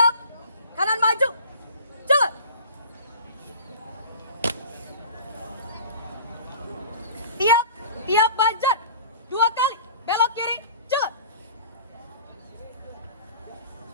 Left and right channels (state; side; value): inverted; both; correlation -0.43